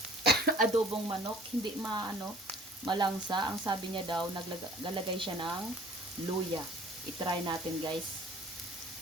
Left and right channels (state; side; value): normal; both; correlation 0.51